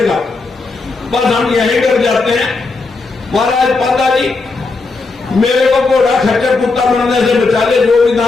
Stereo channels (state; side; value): quieter; right; 3.8 dB